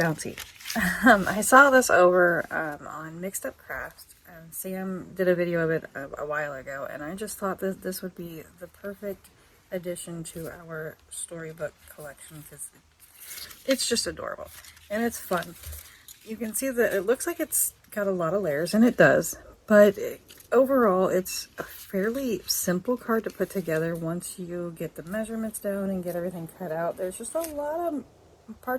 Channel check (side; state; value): both; identical; correlation 1.00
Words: I saw this over on Mixed Up Crafts, and Sam did a video of it a while ago, and I just thought that this would be the perfect addition to our Storybook collection because it's just adorable and it's fun. You can see that it looks like it's got a lot of layers, and it does, but overall it's a fairly simple card to put together once you get the measurements down and get everything cut out. There's just a lot of